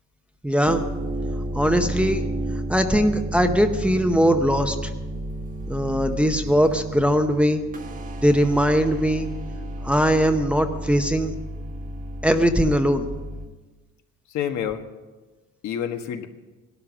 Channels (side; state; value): both; normal; correlation 0.81